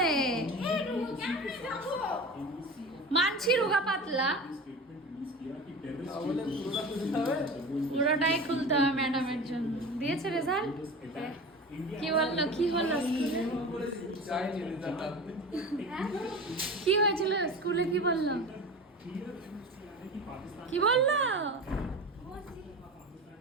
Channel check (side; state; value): both; normal; correlation 0.31